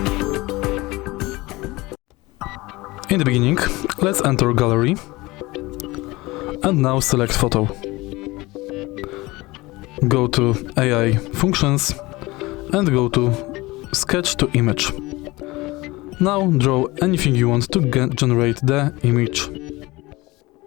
In the beginning, let's enter Gallery and now select Photo. Go to AI Functions and go to Sketch to Image. Now draw anything you want to generate the image.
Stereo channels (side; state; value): right; quieter; 21.3 dB